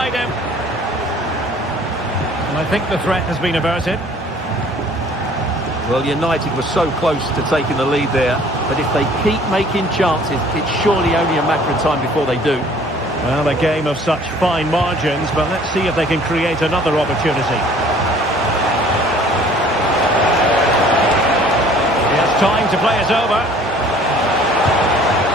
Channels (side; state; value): both; normal; correlation 0.53